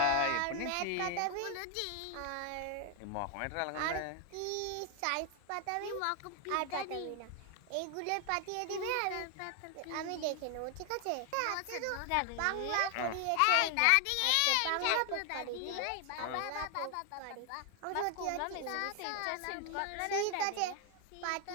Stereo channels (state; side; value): different; both; correlation 0.00